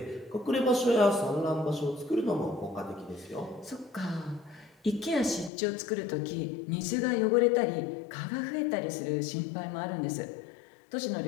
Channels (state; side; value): drops out; right; at 5.5 s